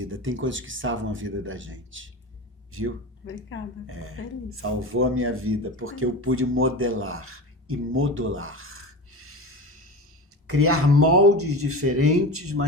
Tem coisas que salvam a vida da gente. Viu? Obrigada. Feliz. Salvou a minha vida, porque eu pude modelar e modular. Criar moldes diferentes,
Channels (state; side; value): normal; both; correlation 0.28